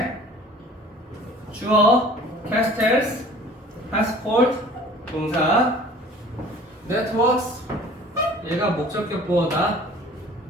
주어 castles, passport 동사 networks 얘가 목적격 보어다.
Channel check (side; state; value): both; normal; correlation 0.48